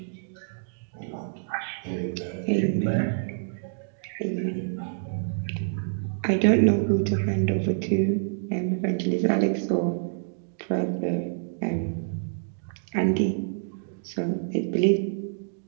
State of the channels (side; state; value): left; silent; digital silence